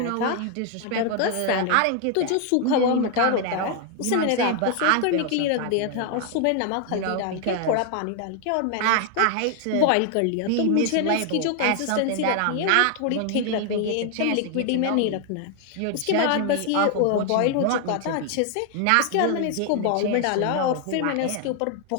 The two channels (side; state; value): both; different; correlation 0.00